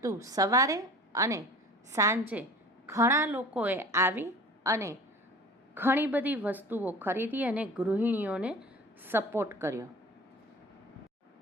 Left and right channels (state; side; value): normal; both; correlation 0.41